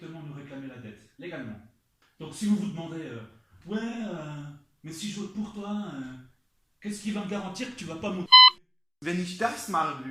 nous réclamer la dette, légalement. Donc si vous vous demandez, mais si je vote pour toi, qu'est-ce qui va me garantir que tu vas pas monter? Wenn ich das machen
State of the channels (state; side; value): identical; both; correlation 1.00